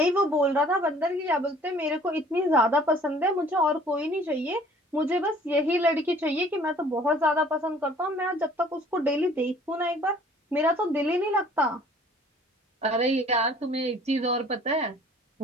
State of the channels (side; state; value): both; normal; correlation 0.53